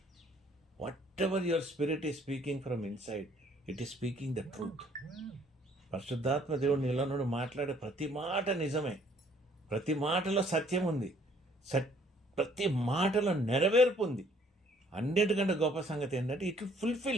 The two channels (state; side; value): normal; both; correlation 0.61